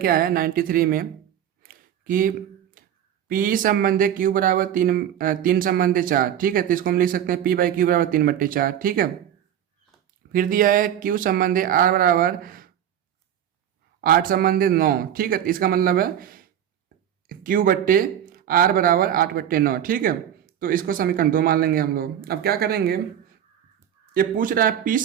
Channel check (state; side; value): quieter; left; 10.1 dB